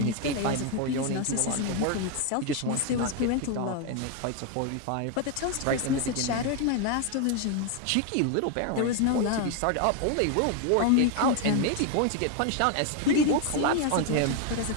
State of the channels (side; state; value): both; different; correlation 0.01